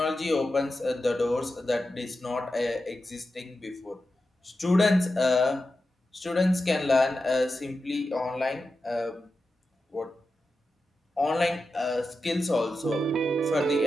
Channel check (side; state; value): both; normal; correlation 0.91